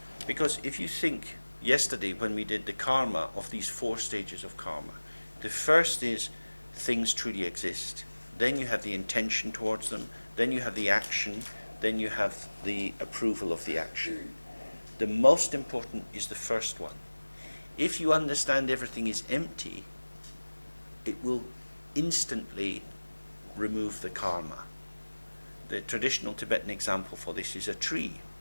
Because if you think yesterday when we did the karma of these 4 stages of karma, the first is things truly exist, then you have the intention towards them, then you have the action, then you have the approval of the action. The most important is the first one. If you understand everything is empty, it will instantly remove the karma. The traditional Tibetan example for this is a tree.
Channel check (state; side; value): inverted; both; correlation -1.00